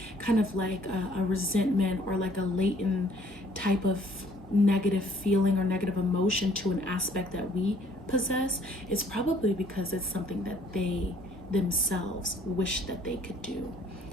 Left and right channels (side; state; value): both; normal; correlation 0.60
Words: kind of like a resentment or like a latent type of negative feeling or negative emotion to an aspect that we possess, it's probably because it's something that they themselves wish that they could do.